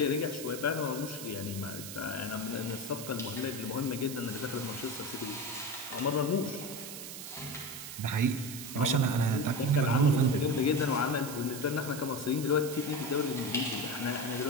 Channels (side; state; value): right; noise; hiss, 10 dB below the sound